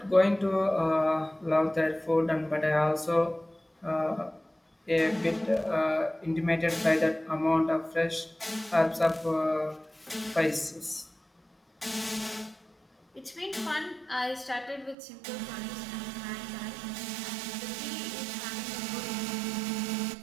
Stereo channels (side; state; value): left; drops out; at 15.0 s